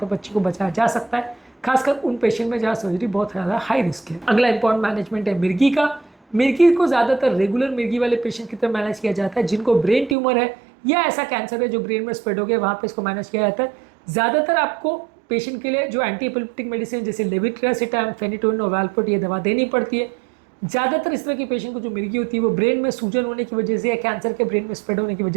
बच्चे को बचाया जा सकता है, खासकर उन पेशेंट में जहाँ सर्जरी बहुत ज़्यादा हाई रिस्क है। अगला इंपॉर्टेंट मैनेजमेंट है मिर्गी का। मिर्गी को ज़्यादातर रेगुलर मिर्गी वाले पेशेंट की तरह मैनेज किया जाता है जिनको ब्रेन ट्यूमर है या ऐसा कैंसर है जो ब्रेन में स्प्रेड हो गया, वहाँ पे इसको मैनेज किया जाता है। ज़्यादातर आपको पेशेंट के लिए जो एंटी एपिलेप्टिक मेडिसिन जैसे लेविट्रासिटाम, फेनिटोइन और वैल्पोट ये दवा देनी पड़ती है। ज़्यादातर इस तरह की पेशेंट को जो मिर्गी होती है वो ब्रेन में सूजन होने की वजह से या कैंसर के ब्रेन में स्प्रेड होने की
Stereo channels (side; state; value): left; drops out; at 10.2 s